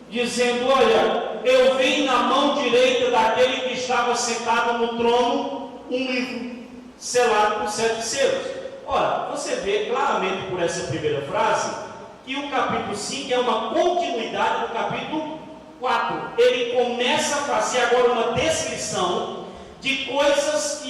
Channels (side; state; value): both; identical; correlation 1.00